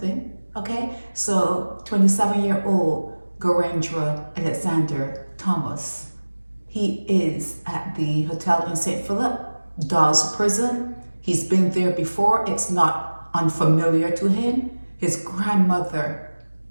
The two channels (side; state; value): both; inverted; correlation -1.00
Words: Okay? So 27-year-old Garendra Alexander Thomas, he is at the hotel in St. Philip, Dodds prison. He's been there before. It's not unfamiliar to him. His grandmother,